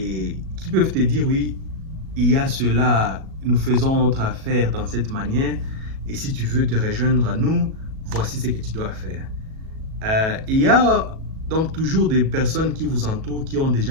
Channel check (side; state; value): left; late; 37 ms